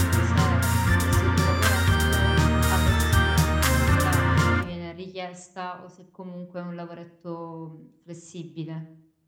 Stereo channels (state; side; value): identical; both; correlation 1.00